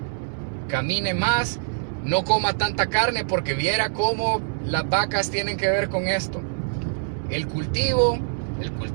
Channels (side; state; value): left; silent; digital silence